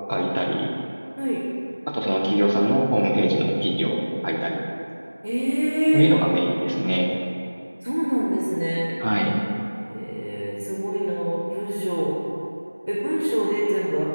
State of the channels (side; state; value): both; inverted; correlation -1.00